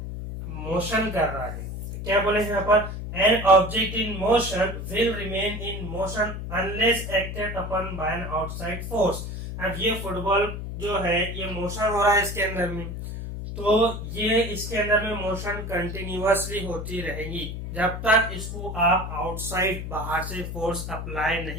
मोशन कर रहा है। तो क्या बोले यहाँ पर, an object in motion will remain in motion unless acted upon bye an outside force. अब ये फुटबॉल जो है ये मोशन हो रहा है इसके अंदर में, तो ये इसके अंदर में मोशन कंटिन्यूअसली होती रहेगी जब तक इसको आप आउटसाइड, बाहर से फोर्स अप्लाई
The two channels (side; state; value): left; noise; hum, 6 dB below the sound